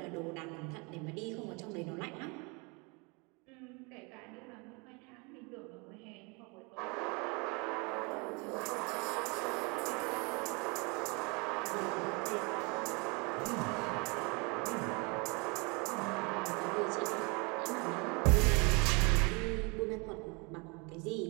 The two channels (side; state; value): left; quieter; 29.8 dB